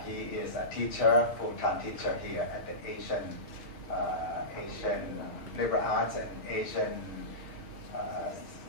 He is a teacher, full-time teacher here at the Asian Liberal Arts and Asian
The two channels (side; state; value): right; late; 6.2 ms